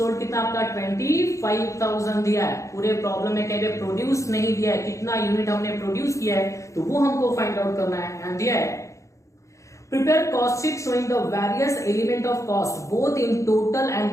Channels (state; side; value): late; right; 0.15 ms